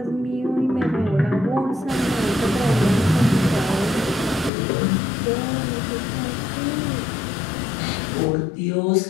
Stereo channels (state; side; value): drops out; right; at 4.5 s